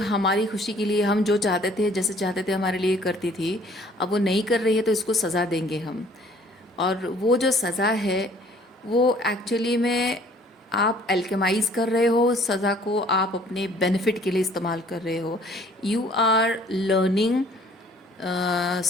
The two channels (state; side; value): normal; both; correlation 0.56